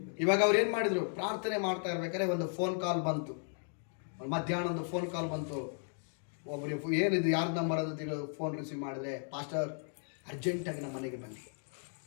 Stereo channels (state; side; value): silent; right; 54 dB below the other